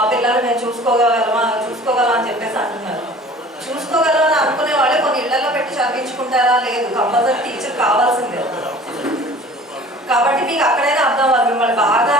పిల్లలు మేము చూసుకోగలం అని చెప్పేసి అంటున్నారు. చూసుకోగలం అని అనుకునే వాళ్ళే కొన్ని ఇళ్లలో పెట్టి చదివించుకుంటారా? లేదు, కంపల్సరీ టీచర్ కావాల్సిందే. కాబట్టి మీకు అక్కడైనా అర్థం అవ్వాలి. మిమ్మల్ని బాగా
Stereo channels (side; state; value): both; normal; correlation 0.46